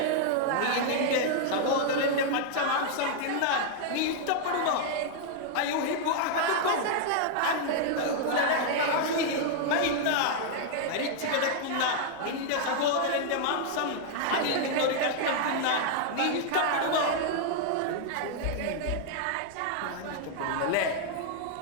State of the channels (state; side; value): different; both; correlation 0.00